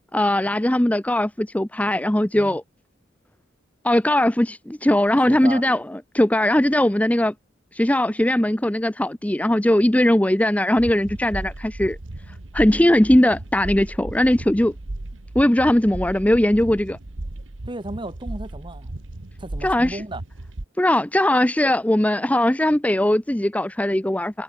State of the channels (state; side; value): normal; both; correlation 0.93